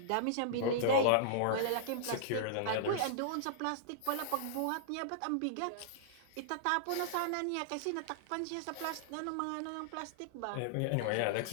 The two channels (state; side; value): different; both; correlation -0.01